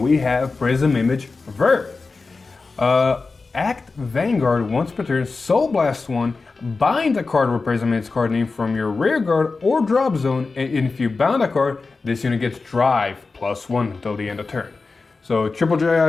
have Prism Image Vert. Act Vanguard once per turn, Soul Blast 1, bind a card with Prism in its card name from your rear guard or drop zone, and if you bound a card, this unit gets drive +1 until the end of turn. So triple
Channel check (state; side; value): quieter; right; 4.1 dB